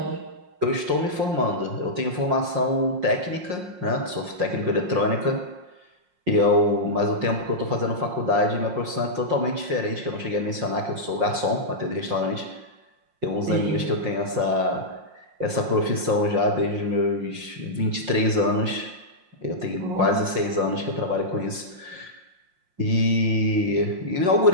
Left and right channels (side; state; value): left; late; 5.6 ms